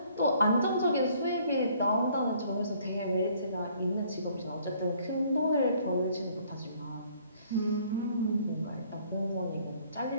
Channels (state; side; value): inverted; both; correlation -0.61